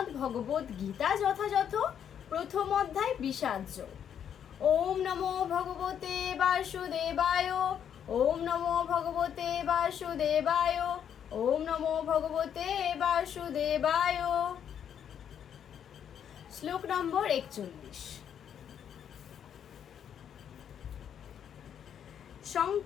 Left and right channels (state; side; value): quieter; right; 8.8 dB